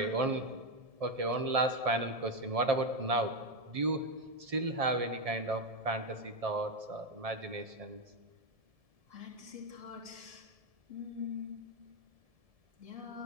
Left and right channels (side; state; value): left; late; 1.7 ms